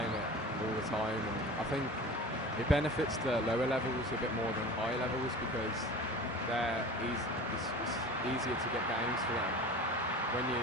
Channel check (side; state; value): both; normal; correlation 0.37